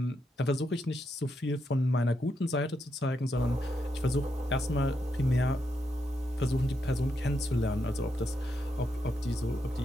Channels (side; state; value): both; normal; correlation 0.82